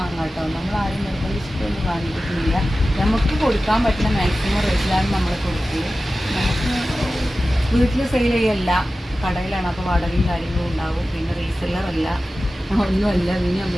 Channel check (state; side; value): normal; both; correlation 0.95